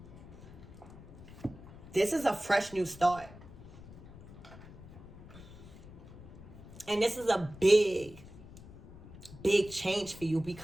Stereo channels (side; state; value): left; noise; rumble, 17 dB below the sound